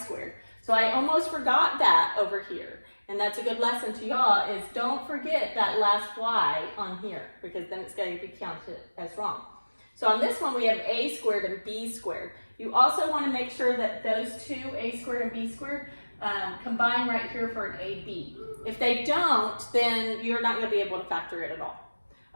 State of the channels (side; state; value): both; inverted; correlation -1.00